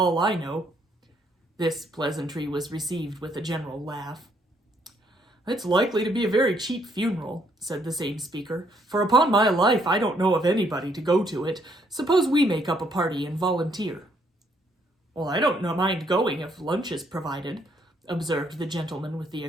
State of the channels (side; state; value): both; normal; correlation 0.70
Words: I know." This pleasantry was received with a general laugh. It's likely to be a very cheap funeral, said the same speaker, for upon my life I don't know of anybody to go to it. Suppose we make up a party and volunteer. Well, I don't mind going if lunch is provided, observed the gentleman with the